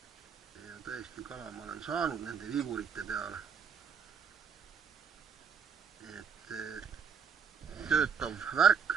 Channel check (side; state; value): left; quieter; 6.6 dB